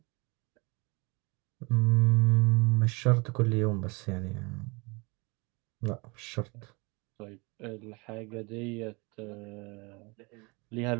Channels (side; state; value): left; quieter; 28.1 dB